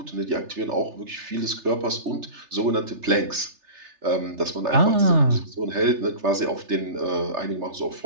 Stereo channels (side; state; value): left; late; 3.3 ms